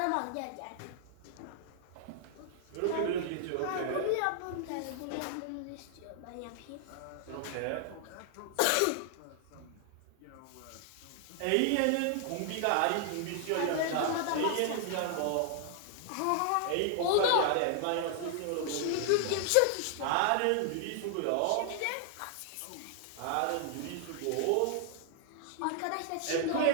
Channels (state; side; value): different; both; correlation 0.00